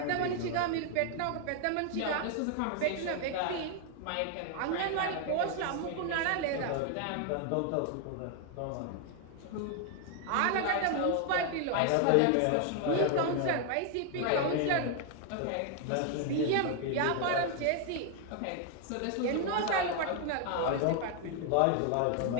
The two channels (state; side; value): different; both; correlation 0.00